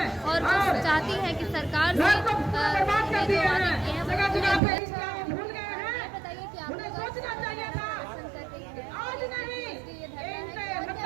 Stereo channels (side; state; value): left; drops out; at 4.6 s